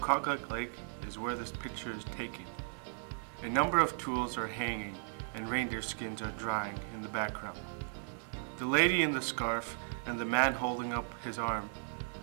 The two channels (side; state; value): left; silent; digital silence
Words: Lake is where this picture is taken. A number of tools are hanging and reindeer skins are drying in the background. The lady in the scarf and the man holding up his arm